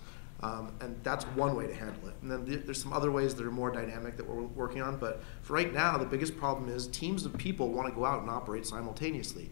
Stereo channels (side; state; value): right; silent; digital silence